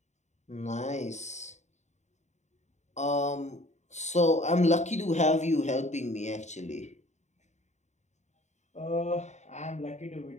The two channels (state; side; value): late; right; 0.34 ms